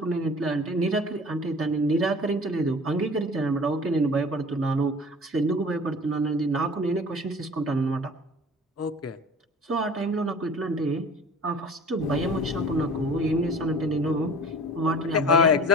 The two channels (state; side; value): normal; both; correlation 0.42